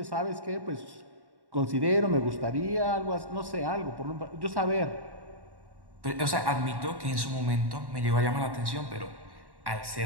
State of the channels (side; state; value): left; late; 1.1 ms